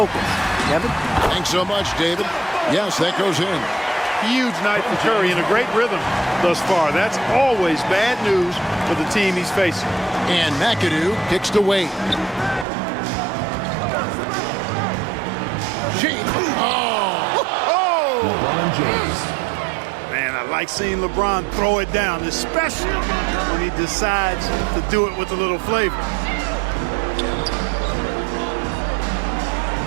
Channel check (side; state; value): left; drops out; at 12.7 s